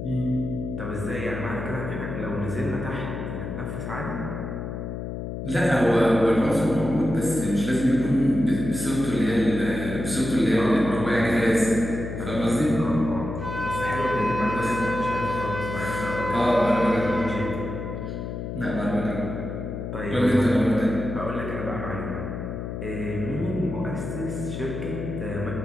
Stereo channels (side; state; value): left; noise; hum, 6 dB below the sound